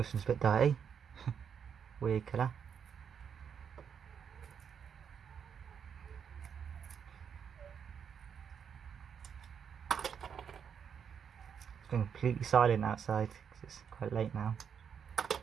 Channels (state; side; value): quieter; left; 7.4 dB